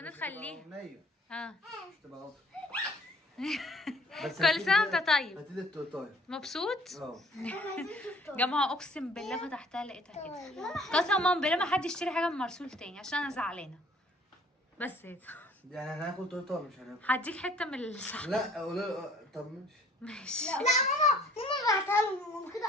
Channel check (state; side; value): normal; both; correlation 0.56